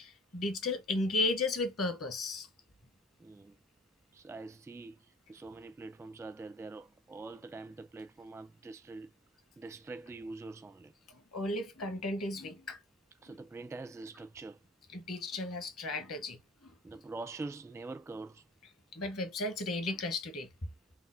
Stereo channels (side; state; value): both; normal; correlation 0.48